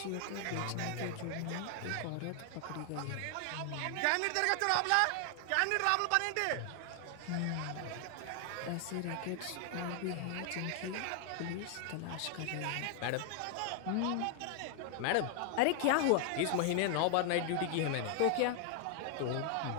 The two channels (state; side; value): different; both; correlation 0.00